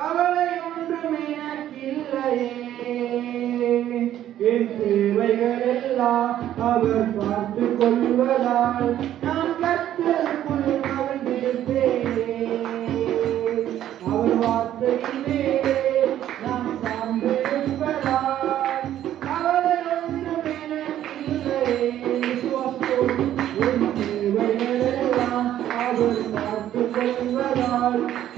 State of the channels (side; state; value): left; quieter; 11.8 dB